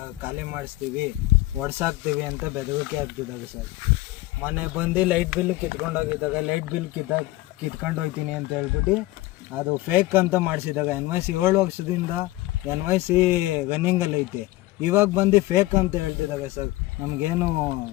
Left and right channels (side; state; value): right; quieter; 18.5 dB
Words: ಖಾಲಿ ಮಾಡಿಸ್ತೀವಿ, ಒಡ್ಸಾಕ್ತೀವಿ ಅಂತ ಬೆದರಿಕೆ ಆಗ್ತಿದ್ದಾಗ ಸರ್. ಮನೆ ಬಂದು ಲೈಟ್ ಬಿಲ್ ಕಿತ್ಕೊಂಡೋಗಿದ್ದಾಗ ಲೈಟ್ ಬಿಲ್ ಕಿತ್ಕೊಂಡು ಹೋಗ್ತೀನಿ ಅಂತ ಹೇಳ್ಬಿಟ್ಟು ಅದು ಫೇಕ್ ಅಂತ ಮಾಡಿಸಿದಾಗ NYC 7 ವರ್ಷದಿಂದ NYC ರನ್ನಿಂಗಲ್ಲಿ ಐತೆ. ಇವಾಗ ಬಂದು ಫೇಕ್ ಅಂತ ಹೇಳ್ತಿದ್ದಾಗ ಸರ್ ನಮಗೇನು